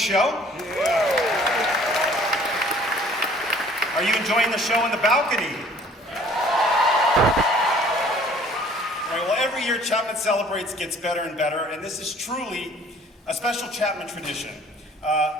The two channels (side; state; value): both; normal; correlation 0.54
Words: Yeah. Are you enjoying the show in the balcony? All right, well, every year Chapman Celebrates gets better and better, and this is truly a special Chapman tradition.